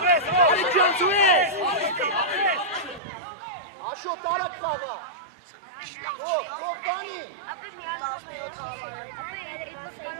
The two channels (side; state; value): left; drops out; at 3.0 s